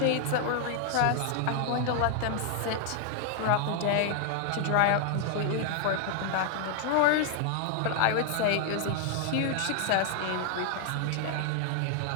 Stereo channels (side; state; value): both; different; correlation 0.00